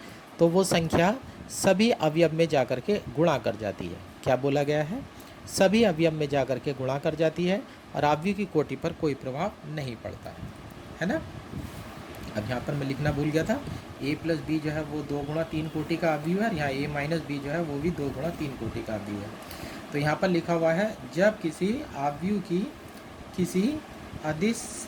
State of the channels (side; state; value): both; identical; correlation 1.00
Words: तो वो संख्या सभी अवयव में जाकर के गुणा कर जाती है। क्या बोला गया है, सभी अवयव में जाकर के गुणा कर जाती है और अवयव की कोटि पर कोई प्रभाव नहीं पड़ता है ना। अब यहाँ पर मैं लिखना भूल गया था, ए प्लस बी जो है वो 2 गुणा 3 कोटि का अवयव है और यहाँ ए माइनस बी जो है वो भी 2 गुणा 3 कोटि का अवयव है। तो यहाँ पर लिखा हुआ है, जब किसी अवयव की किसी अदिश